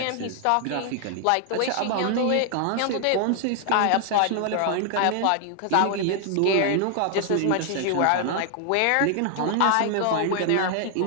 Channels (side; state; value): both; different; correlation 0.00